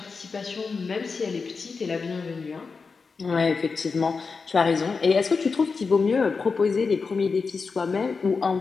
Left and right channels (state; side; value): quieter; right; 4.8 dB